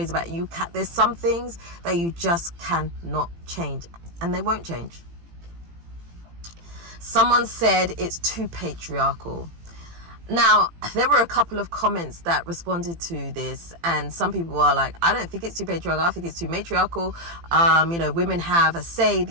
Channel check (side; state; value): left; late; 18 ms